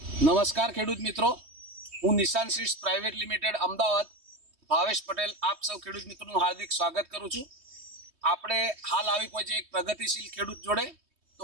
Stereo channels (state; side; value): late; left; 3.2 ms